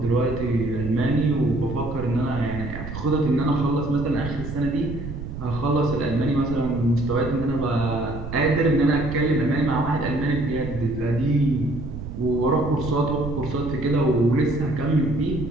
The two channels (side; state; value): right; noise; rumble, 8 dB below the sound